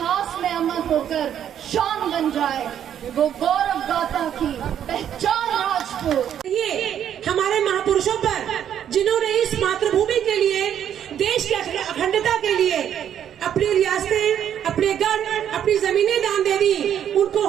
में अमर होकर शान बन जाए वो गौरव गाथा की पहचान राजपूत। ये हमारे महापुरुषों पर जिन्होंने इस मातृभूमि के लिए, देश की अखंडता के लिए अपनी रियासतें, अपने गढ़, अपनी जमीनें दान दे दी, उनको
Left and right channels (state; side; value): quieter; left; 9.7 dB